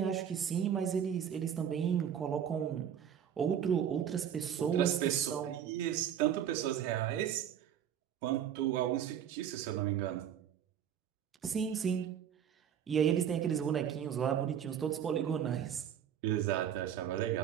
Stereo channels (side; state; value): left; quieter; 9.1 dB